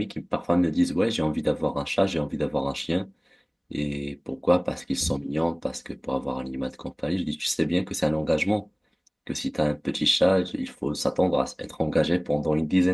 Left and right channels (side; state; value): both; identical; correlation 1.00